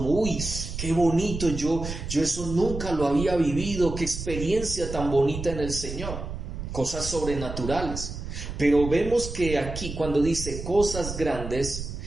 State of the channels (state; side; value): noise; right; rumble, 7 dB below the sound